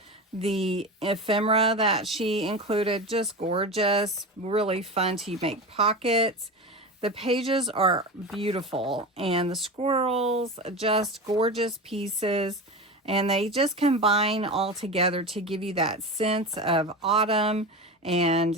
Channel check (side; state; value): both; normal; correlation 0.26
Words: the ephemera that she included, just gorgeous, really fun to make pockets. The pages are beautiful, and the squirrels, just gorgeous pieces. And they just combine all together to give you that sense of autumn,